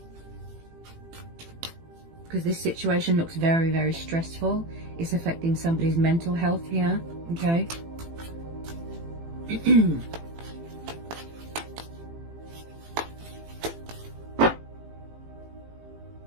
Because this situation looks very, very stressful. It's affecting somebody's mental health here. Okay?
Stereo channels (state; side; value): late; left; 18 ms